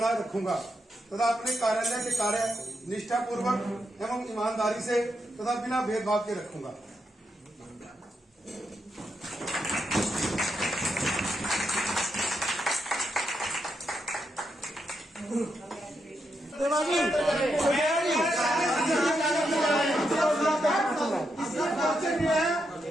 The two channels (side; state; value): both; normal; correlation 0.83